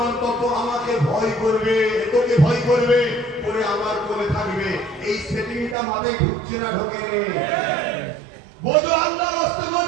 তত আমাকে ভয় করবে, তোকে ভয় করবে, পরে আমার কোলে থাকবে। এই সেটিংটা মাথায় ঢুকছে না? ঢোকে রে? বোঝো, আল্লাহ রাস্তে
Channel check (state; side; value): drops out; left; at 5.8 s